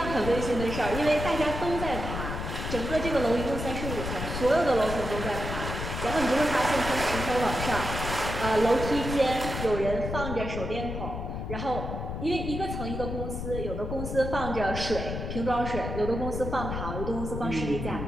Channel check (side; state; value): left; noise; rumble, 5 dB below the sound